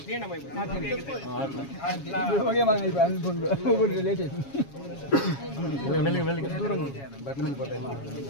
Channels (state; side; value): late; right; 7.3 ms